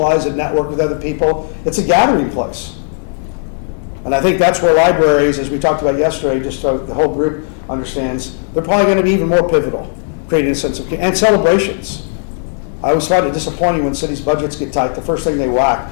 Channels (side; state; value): right; silent; digital silence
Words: and network with other people. It's a gathering place. And I think that's where libraries, as we talked about yesterday, just so the whole group understands, they're probably going to be even more pivotal, creating a sense of, and celebrations. I always find it disappointing when cities' budgets get tight, the first thing they